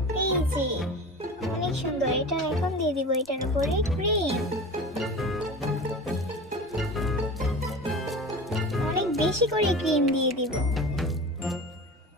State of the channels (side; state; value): both; normal; correlation 0.33